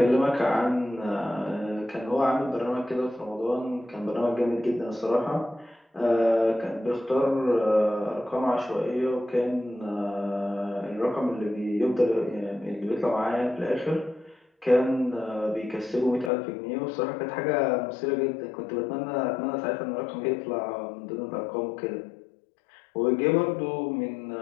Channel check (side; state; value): right; drops out; at 16.3 s